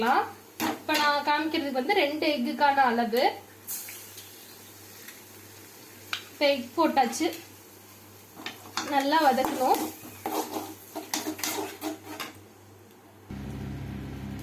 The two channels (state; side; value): identical; both; correlation 1.00